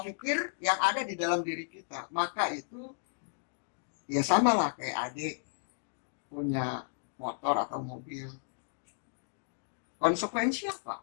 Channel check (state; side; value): silent; right; digital silence